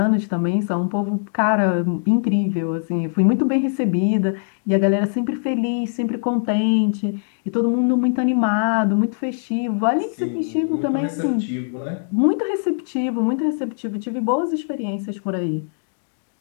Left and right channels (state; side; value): silent; right; digital silence